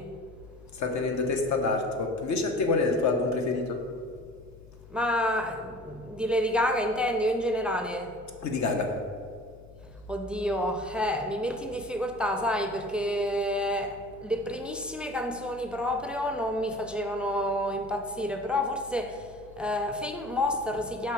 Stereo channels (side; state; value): left; noise; hum, 20 dB below the sound